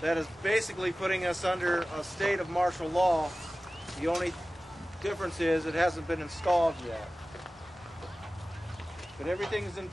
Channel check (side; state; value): both; normal; correlation 0.96